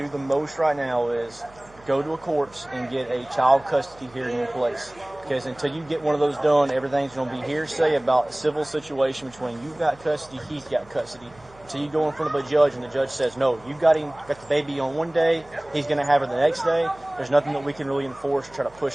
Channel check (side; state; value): right; noise; hum, 25 dB below the sound